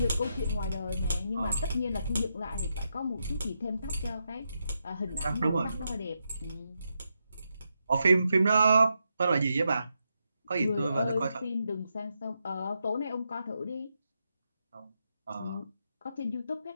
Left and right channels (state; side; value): inverted; both; correlation -0.84